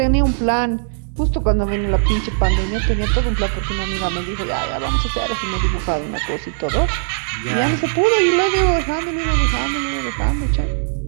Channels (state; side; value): silent; left; digital silence